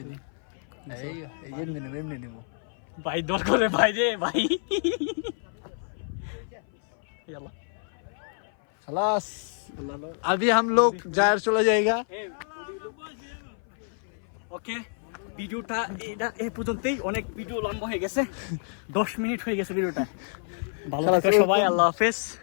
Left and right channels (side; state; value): right; silent; 56 dB below the other